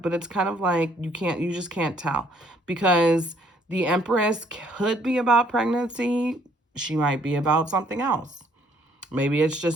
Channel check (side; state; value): both; normal; correlation 0.64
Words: But it's kind of like you just can't tell, because the Empress could be about pregnancy. She might be about something else. Maybe it's